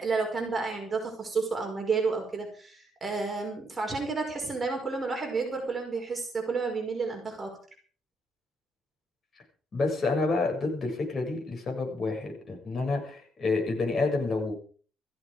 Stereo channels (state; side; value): normal; both; correlation 0.75